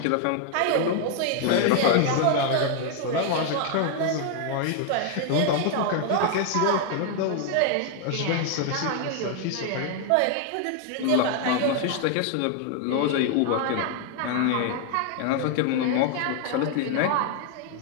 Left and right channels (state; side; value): different; both; correlation 0.00